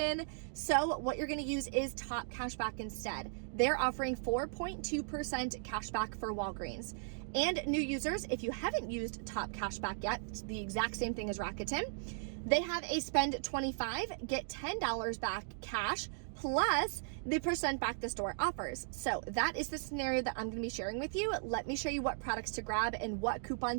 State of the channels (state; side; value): silent; left; digital silence